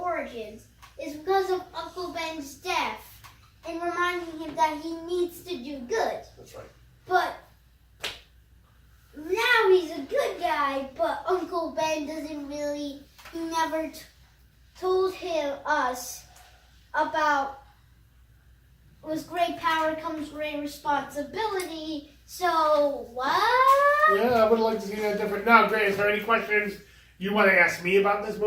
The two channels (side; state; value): both; identical; correlation 1.00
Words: is because of Uncle Ben's death and reminding him that he needs to do good. That's right. But now he's a good guy, but Uncle Ben doesn't really, he never told us about with great power comes great responsibility. So what? Yeah, I would like to see that different. Now, Grant, is there any questions you want to ask me about this